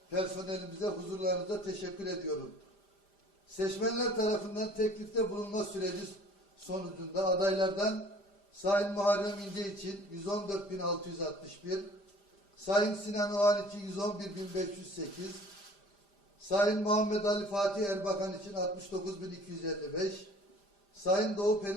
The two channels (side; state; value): right; late; 5.0 ms